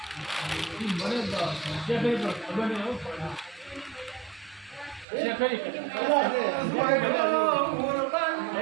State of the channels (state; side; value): drops out; left; at 5.1 s